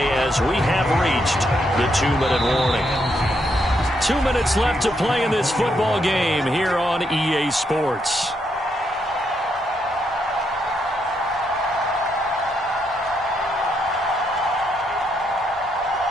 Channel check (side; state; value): both; normal; correlation 0.78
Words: as we have reached the 2-minute warning. 2 minutes left to play in this football game here on EA Sports.